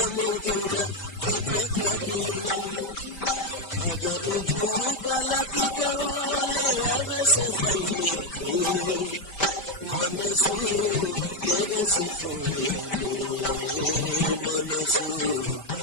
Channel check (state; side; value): late; right; 5.1 ms